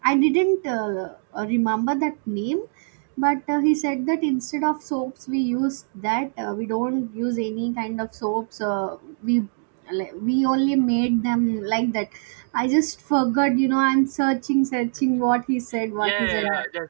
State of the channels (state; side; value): silent; left; digital silence